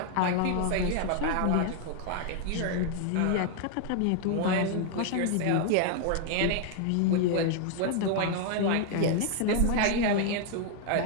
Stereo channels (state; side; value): different; both; correlation 0.00